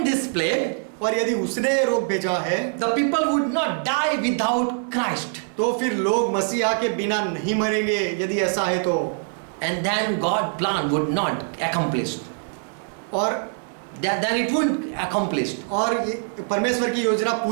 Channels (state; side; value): silent; left; 58 dB below the other